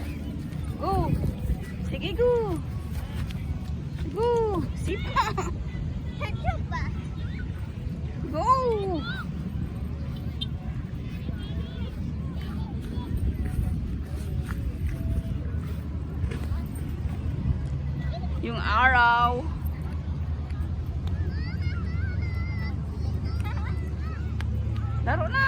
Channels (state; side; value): identical; both; correlation 1.00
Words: Go. Sige, go. Go. Sipa. Go. Yung araw. Laro